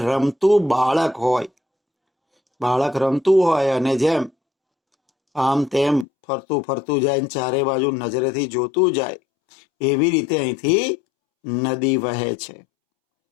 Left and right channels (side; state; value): right; drops out; at 6.1 s